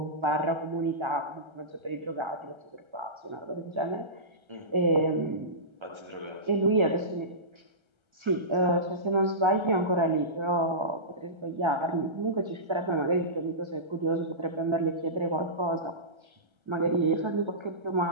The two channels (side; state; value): left; late; 1.3 ms